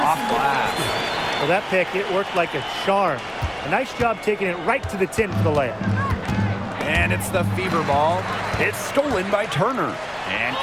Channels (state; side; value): identical; both; correlation 1.00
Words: glass. Well, that pick, it worked like a charm. A nice job taking it right to the tin for the layup. And it's the fever ball. It's stolen by Turner. And